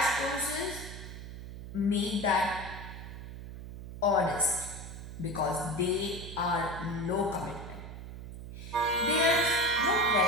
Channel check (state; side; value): noise; right; hum, 11 dB below the sound